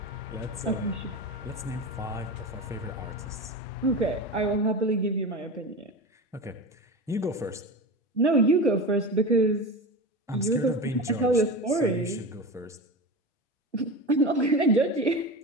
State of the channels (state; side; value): normal; both; correlation 0.27